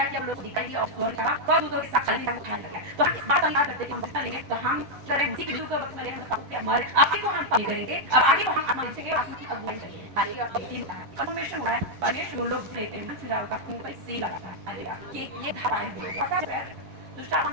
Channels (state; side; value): late; left; 10 ms